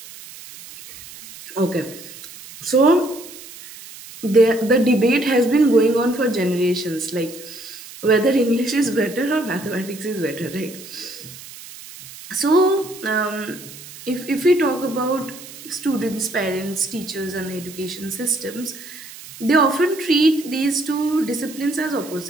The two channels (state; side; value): noise; right; hiss, 16 dB below the sound